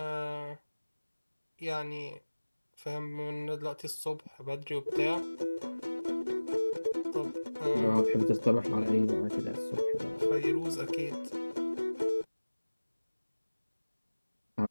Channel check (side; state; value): both; inverted; correlation -1.00